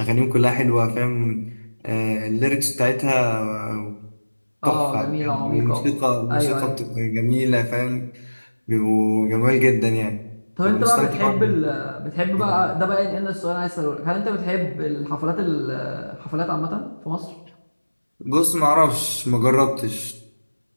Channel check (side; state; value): both; inverted; correlation -1.00